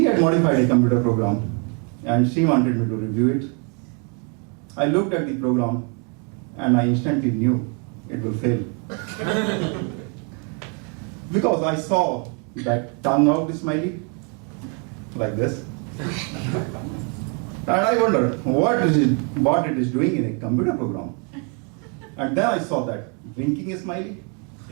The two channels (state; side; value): quieter; left; 37.0 dB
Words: had modified a computer program and she wanted me to review it. I looked at the program and I instantly knew it will fail. Because I saw that tongue out smiley, like this. And I wondered what it is doing in a computer program. And then I saw that winking smiley.